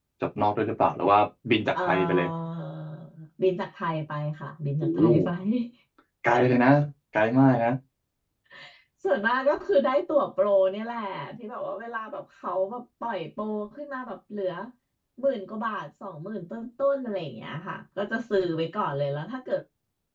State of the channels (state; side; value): identical; both; correlation 1.00